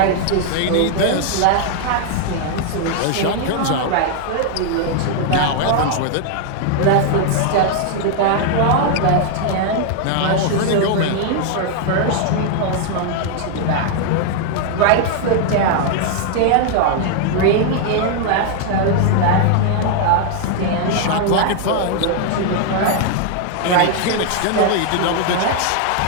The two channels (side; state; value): both; different; correlation 0.00